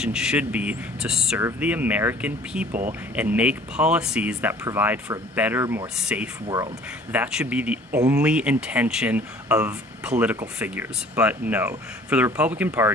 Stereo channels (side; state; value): both; normal; correlation 0.51